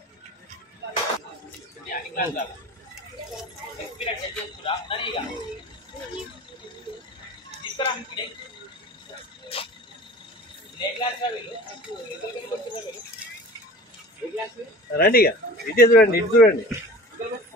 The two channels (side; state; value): both; normal; correlation 0.40